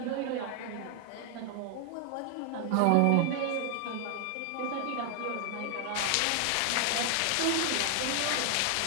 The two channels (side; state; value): both; different; correlation 0.00